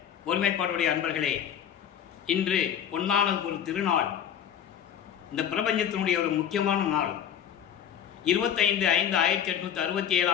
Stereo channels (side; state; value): right; quieter; 9.2 dB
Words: ஒருமைப்பாடுடைய அன்பர்களே, இன்று பொன்னான ஒரு திருநாள். இந்த பிரபஞ்சத்தினுடைய ஒரு முக்கியமான நாள்.